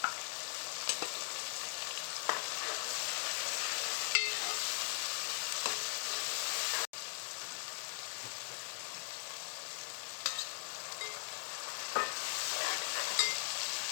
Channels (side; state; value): right; silent; digital silence